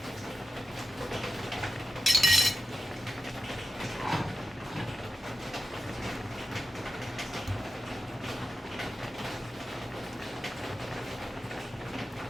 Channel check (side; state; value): both; normal; correlation 0.90